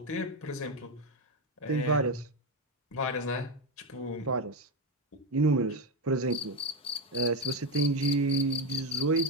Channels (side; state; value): both; normal; correlation 0.10